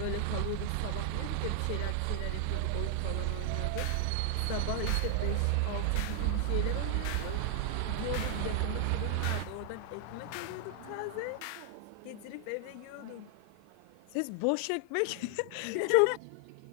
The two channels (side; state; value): both; different; correlation 0.00